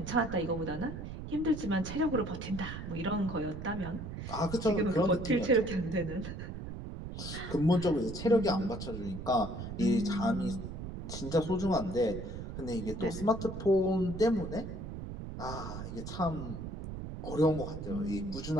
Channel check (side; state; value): right; noise; rumble, 8 dB below the sound